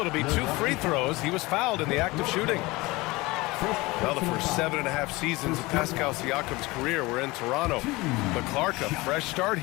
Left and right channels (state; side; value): quieter; right; 22.1 dB